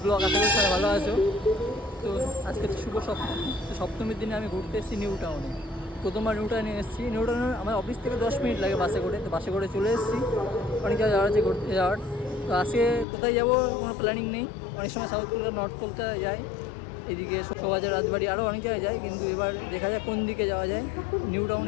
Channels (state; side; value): drops out; right; at 13.1 s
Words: blog. আশা করি সবাই ভালো আছো। তো আজকে শুভ সপ্তমী। তো সপ্তমীর দিনে আমি ঘুরতে এসেছি নিউ টাউনে। প্রথমবার নিউ টাউনে এসেছি। নিউ টাউনে আমার অফিস থেকে 10 মিনিট লাগে বাসে করে। তো বাসে করে চলে এসেছি। অনেক জায়গায় যাওয়ার আছে ঘুরতে যাওয়ার। তো আজকে কোথায় যাবো কোনো প্ল্যানিং নেই। অনেক সময় সাউথ কলকাতা, নর্থ কলকাতা যাই, এদিকে শোভাবাজার, রাজবাড়ি, আরও অনেক জায়গায় যাই। কিন্তু এবার দেখা যায় কোন দিকে যাওয়া যায়। নিউ